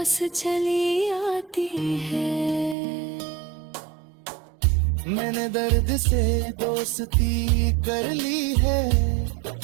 चली आती है। मैंने दर्द से दोस्ती कर ली है,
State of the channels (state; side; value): drops out; left; at 2.8 s